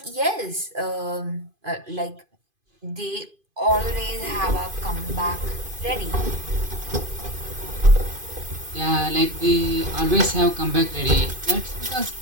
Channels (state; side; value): late; left; 2.5 ms